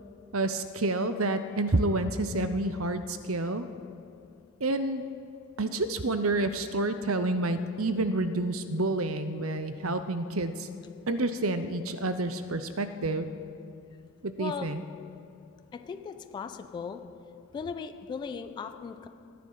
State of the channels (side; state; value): both; normal; correlation 0.21